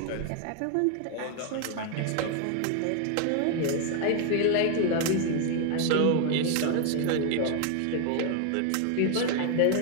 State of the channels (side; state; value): both; different; correlation 0.00